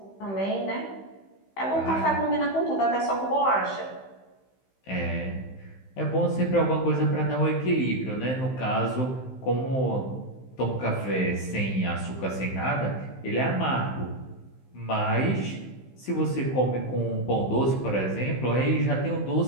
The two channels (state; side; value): late; right; 15 ms